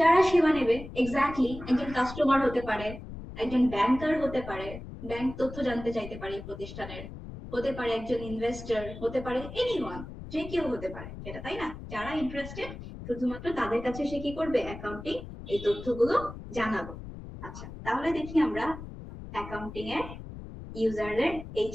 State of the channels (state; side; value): noise; left; rumble, 12 dB below the sound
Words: সেবা নেবে। এক্স্যাক্টলি, একজন কাস্টমার হতে পারে, একজন ব্যাংকার হতে পারে, ব্যাংক তথ্য জানতে চাইতে পারে প্রতিষ্ঠানের, হতে পারে একজন ইনভেস্টর, হতে পারে এনিওয়ান, যে কেউ হতে পারে এটা, তাই না? যারা ইন্টারেস্টেড, শুধুমাত্র তাদের কাছে সে কি করবে? অ্যাকাউন্টিং এই তথ্যগুলো জানাবো। আচ্ছা, তাহলে দেখি আমরা অ্যাকাউন্টিং এর ইউজারের এই